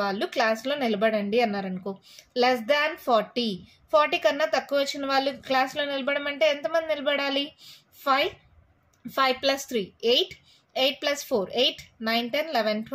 వాళ్ళు క్లాస్లో నిలబడండి అన్నారనుకో. లెస్ దాన్ 40 కన్నా తక్కువ వచ్చిన వాళ్ళు క్లాస్లో నిలబడమంటే ఎంతమంది నిలబడాలి? 5 + 3 8 8 + 4 8 9 10 11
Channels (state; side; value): identical; both; correlation 1.00